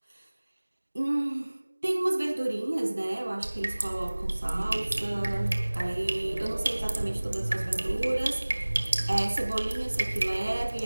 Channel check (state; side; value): inverted; both; correlation -1.00